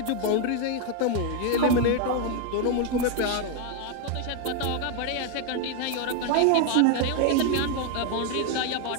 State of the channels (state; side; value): different; both; correlation 0.01